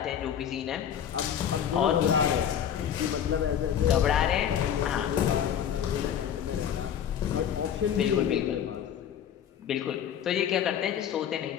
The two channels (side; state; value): right; quieter; 9.2 dB